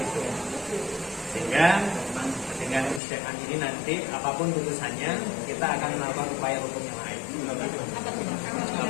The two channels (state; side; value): drops out; right; at 3.0 s